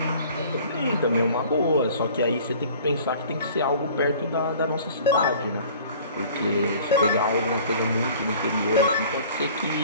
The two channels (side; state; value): both; inverted; correlation -0.48